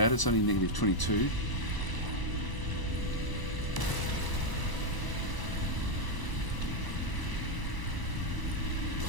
it's only negative 22.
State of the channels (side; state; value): right; late; 1.0 ms